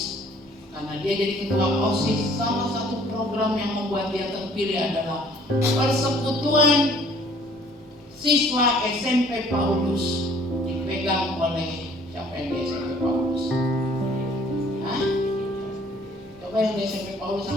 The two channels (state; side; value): normal; both; correlation 0.57